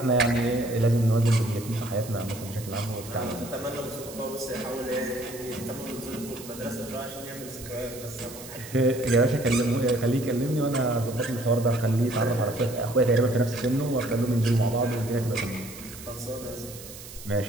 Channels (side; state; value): right; noise; hiss, 15 dB below the sound